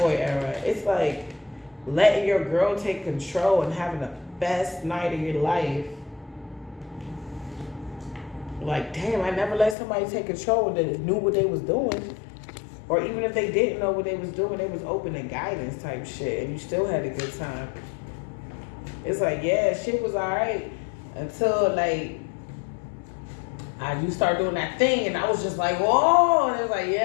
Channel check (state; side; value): drops out; right; at 9.8 s